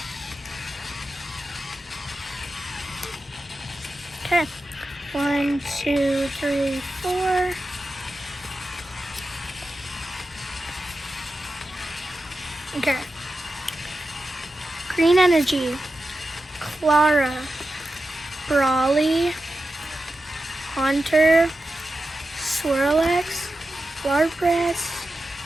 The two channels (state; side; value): normal; both; correlation 0.91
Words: Okay, 1, 2, 3, 4. Okay. Green Energy, Clara, Brawly, Haunter, Swirlex, Larpress,